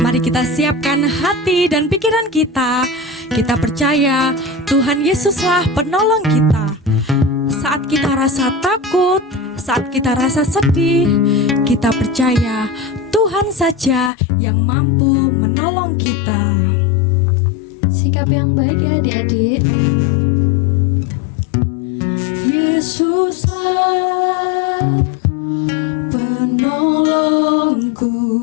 kita siapkan hati dan pikiran kita. Kita percaya Tuhan Yesuslah penolong kita. Saat kita rasa takut, saat kita rasa sedih, kita percaya Tuhan saja yang mampu menolong kita. Sikap yang baik ya adik-adik. Yesuslah penolongku,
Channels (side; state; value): right; drops out; at 14.1 s